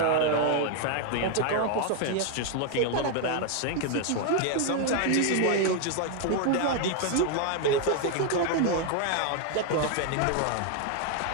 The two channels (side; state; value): both; different; correlation 0.01